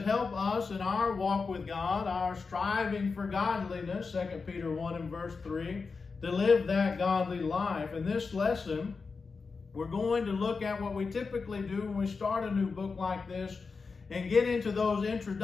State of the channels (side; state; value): right; quieter; 4.7 dB